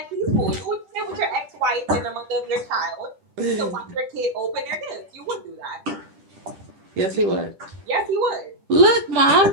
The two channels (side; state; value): left; late; 10 ms